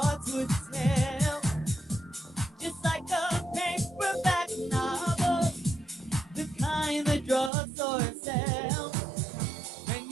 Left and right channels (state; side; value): drops out; left; at 7.5 s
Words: would tell. Just like a paperback novel, the kind that drugstore sells. When